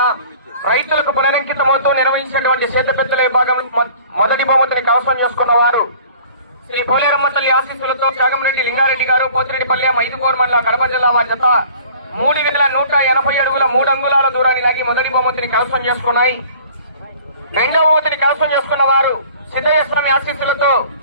రైతులకు పునరంకితమవుతూ నిర్వహించినటువంటి సేతుపెత్తల విభాగం మొదటి బహుమతిని కవసం చేసుకున్న వారు శ్రీ పోలేరమ్మ తల్లి ఆశీస్సులతో త్యాగంరెడ్డి లింగారెడ్డి గారు పోతిరెడ్డిపల్లె 5 కోర్మన్ల కడప జిల్లా వారి జత 3180 అడుగుల 3 అంగుళాల దూరాన్ని లాగి మొదటి బహుమతిని కవసం చేసుకున్నాయి. రెండవ బహుమతిని కవసం చేసుకున్న వారు సిద్ధయ్య స్వామి ఆశీస్సులతో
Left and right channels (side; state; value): both; inverted; correlation -0.50